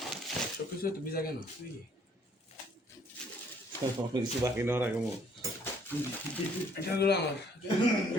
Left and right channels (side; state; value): both; normal; correlation 0.63